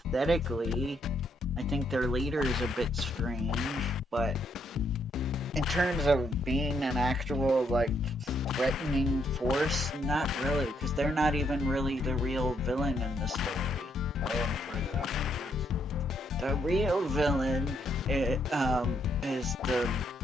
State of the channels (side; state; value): both; normal; correlation 0.74